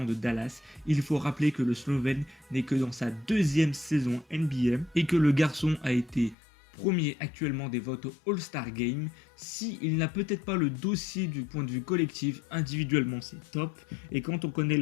de Dallas, il faut rappeler que le Slovène n'est que dans sa deuxième saison NBA et que le garçon a été premier actuellement des votes au All-Star Game. Il n'a peut-être pas le dossier du point de vue collectif, individuellement c'est top. Et quand on connaît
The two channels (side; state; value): right; drops out; at 6.4 s